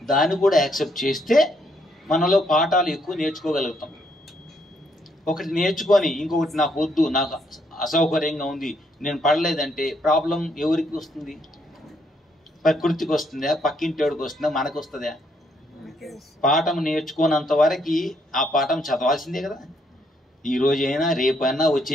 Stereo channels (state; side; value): normal; both; correlation 0.72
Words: దాన్ని కూడా యాక్సెప్ట్ చేస్తే మనలో పాఠాలు ఎక్కువ నేర్చుకోగలుగుతాం. ఒకటి నేర్చుకొని ఇంకొకటి నాకు వద్దు, నాకు అసౌకర్యంగా ఉంది, నేను పడలేదంటే ప్రాబ్లం ఎవరికి వస్తుంది? ప్రకృతికి వస్తుందా? పక్కింటోడికి వస్తుందా? మనకు వస్తుందా? పాఠం నేర్చుకోనంత వరకు ఆ పాఠం చదవాల్సిందే కదా. ఈ రోజైనా రేపైనా